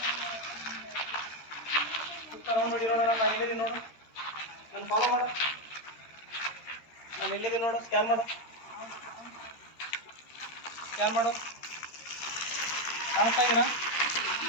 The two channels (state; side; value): late; right; 13 ms